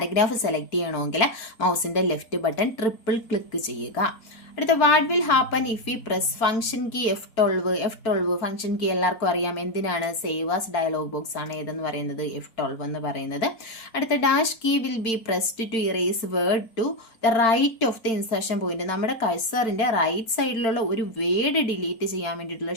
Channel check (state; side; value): late; right; 4.5 ms